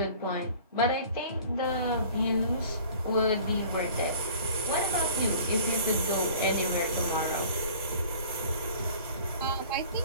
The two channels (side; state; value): both; inverted; correlation -0.47